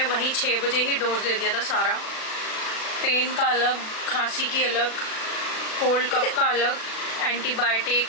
वहीं 6 बजे ही डोज दे दिया था सारा। पेन का अलग, खांसी की अलग, कोल्ड कफ का अलग, एंटीबायोटिक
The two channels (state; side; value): late; right; 37 ms